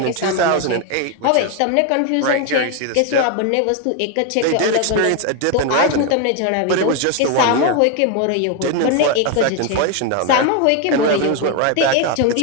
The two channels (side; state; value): both; different; correlation 0.01